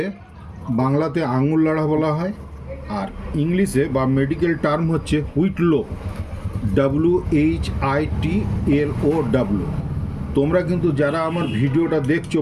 বাংলাতে আঙুল লাড়া বলা হয়, আর ইংলিশে বা মেডিকেল টার্ম হচ্ছে হুইটলো, WHITLOW। তোমরা কিন্তু যারা আমার ভিডিওটা দেখছো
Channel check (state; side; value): identical; both; correlation 1.00